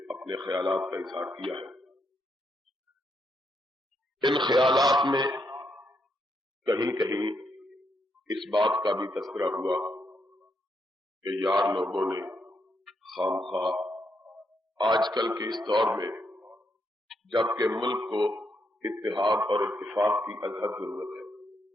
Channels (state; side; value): normal; both; correlation 0.79